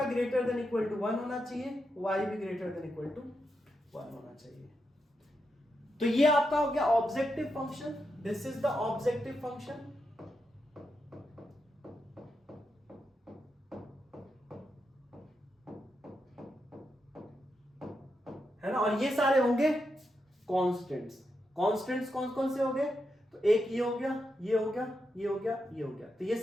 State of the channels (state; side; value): normal; both; correlation 0.85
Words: ग्रेटर देन इक्वल टू 1 होना चाहिए, y भी ग्रेटर देन इक्वल टू 1 होना चाहिए। तो ये आपका हो गया objective function, this is the objective function. है ना, और ये सारे होंगे कांस्टेंट्स। कांस्टेंट्स कौन कौन से हो गए, तो एक ये हो गया, ये हो गया, ये हो गया, ये हो गया, तो ये